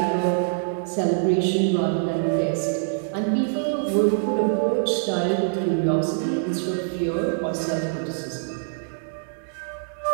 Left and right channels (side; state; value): left; silent; digital silence